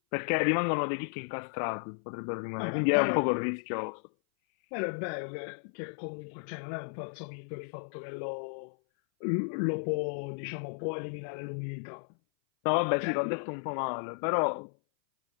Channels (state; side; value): silent; right; 56 dB below the other